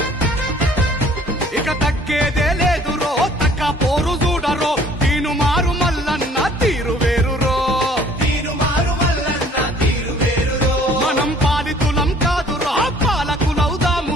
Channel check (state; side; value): normal; both; correlation 0.55